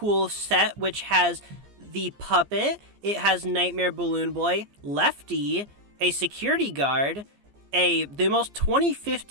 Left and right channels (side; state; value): left; late; 14 ms